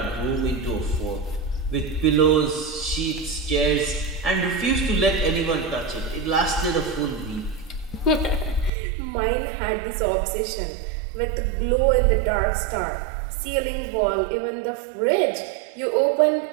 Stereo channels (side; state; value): left; drops out; at 8.7 s